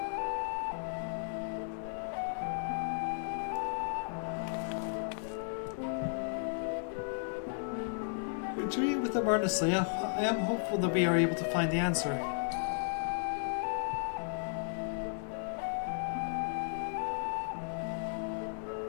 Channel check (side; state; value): right; silent; 55 dB below the other